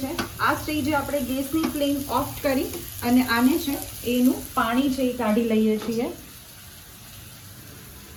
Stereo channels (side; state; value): both; identical; correlation 1.00